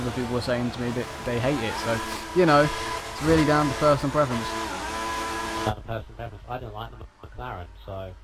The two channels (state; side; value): identical; both; correlation 1.00